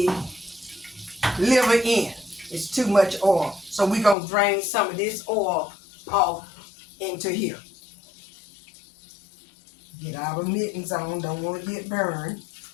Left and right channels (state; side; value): drops out; right; at 4.2 s